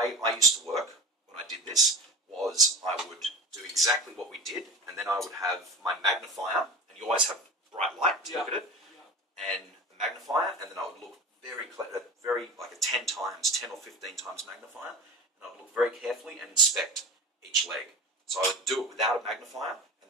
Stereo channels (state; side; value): normal; both; correlation 0.33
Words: I used to work when I did this was I would do exactly what we did, and then then I would have my magnifier, and you always have bright light to look at it, and the magnifier, and then I would look very like a 10 or 15 times magnifier, and I would look very carefully and inspect each leg. So I would do it without a magnifier, and